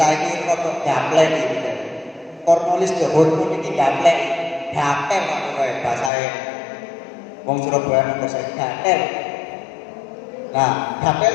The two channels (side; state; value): right; drops out; at 6.1 s